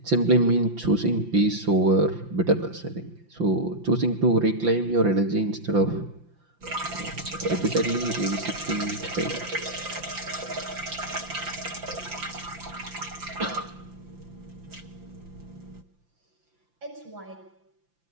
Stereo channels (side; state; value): left; late; 5.8 ms